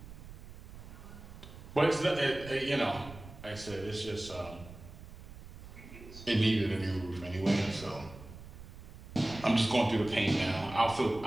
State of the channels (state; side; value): noise; right; rumble, 15 dB below the sound